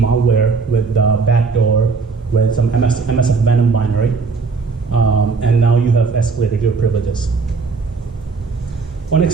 with backdoor, with some MSF Venom binary, and now you have escalated your privileges. On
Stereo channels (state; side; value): quieter; left; 4.6 dB